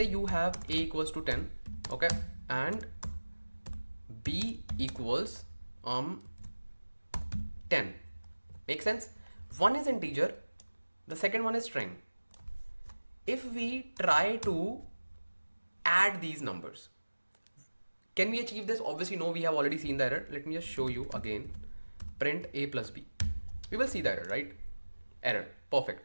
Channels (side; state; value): both; inverted; correlation -1.00